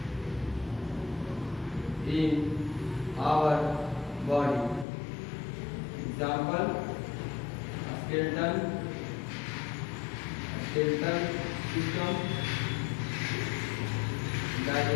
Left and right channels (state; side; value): drops out; right; at 4.9 s